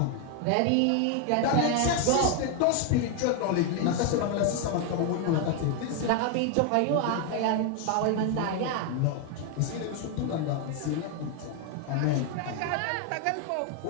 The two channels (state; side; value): different; both; correlation 0.01